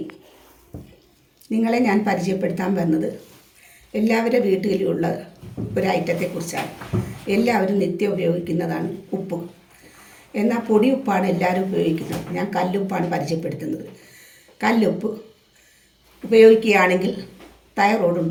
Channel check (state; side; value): identical; both; correlation 1.00